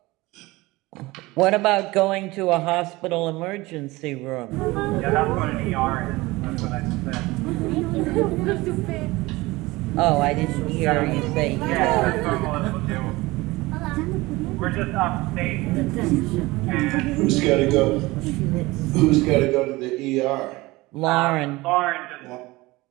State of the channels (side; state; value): left; quieter; 20.9 dB